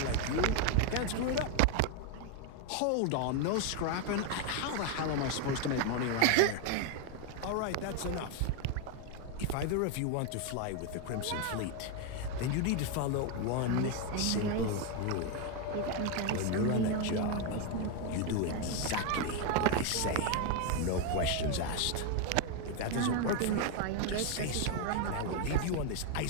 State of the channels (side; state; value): both; different; correlation 0.01